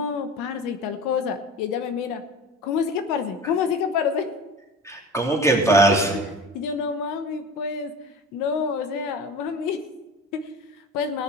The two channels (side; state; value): both; normal; correlation 0.35